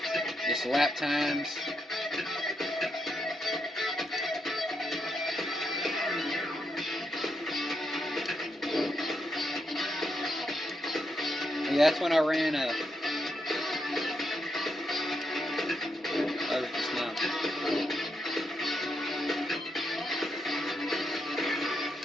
Just lap times. Yeah, that's when I ran just now.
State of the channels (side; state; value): both; normal; correlation 0.81